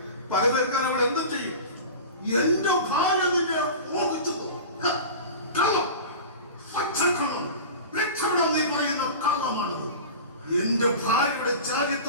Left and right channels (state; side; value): inverted; both; correlation -0.33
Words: പക തീർക്കാൻ അവൾ എന്തും ചെയ്യും. എന്റെ ഭാര്യ നിന്നെ മോഹിച്ചു. കള്ളം, പച്ചക്കള്ളം, രക്ഷപ്പെടാൻ നീ പറയുന്ന കള്ളമാണത്. എന്റെ ഭാര്യയുടെ